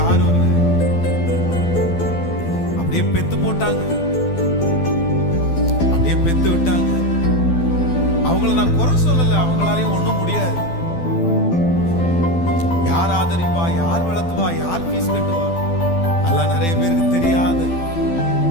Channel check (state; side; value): late; right; 12 ms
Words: இல்லை. அப்படியே பெத்து போட்டாங்க, அப்படியே பெத்து விட்டாங்க. அவங்கள நான் குறை சொல்லல, அவங்களாலையும் ஒண்ணும் முடியாது. யார் ஆதரிப்பா, யார் வளர்த்துவா, யார் ஃபீஸ் கட்டுவா, அதெல்லாம் நிறைய பேருக்கு தெரியாது.